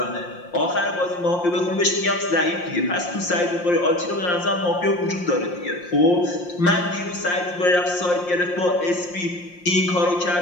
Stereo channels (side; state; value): right; late; 5.7 ms